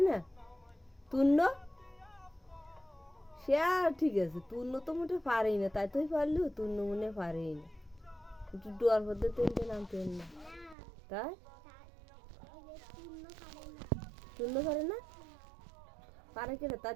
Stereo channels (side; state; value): left; drops out; at 10.8 s